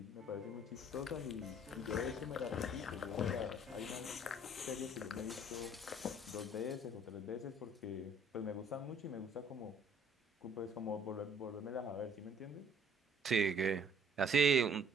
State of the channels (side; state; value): both; normal; correlation 0.58